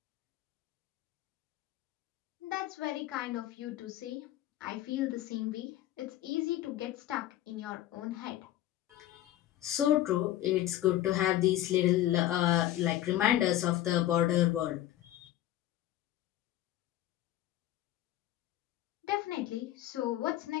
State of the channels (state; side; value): quieter; right; 13.7 dB